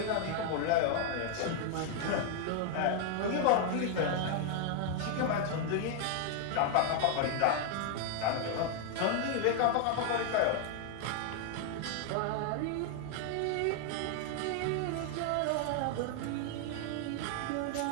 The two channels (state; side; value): different; both; correlation 0.00